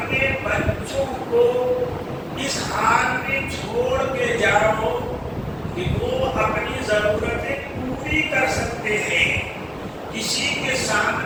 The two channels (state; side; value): identical; both; correlation 1.00